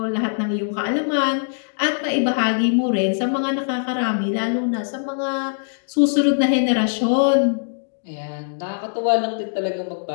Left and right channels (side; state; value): right; silent; digital silence